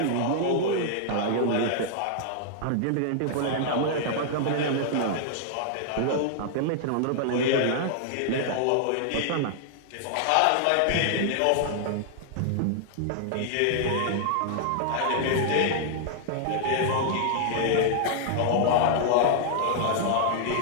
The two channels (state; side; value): different; both; correlation -0.01